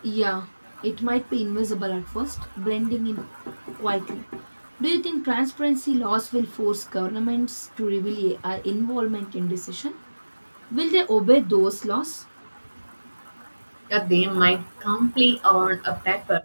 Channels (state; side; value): inverted; both; correlation -1.00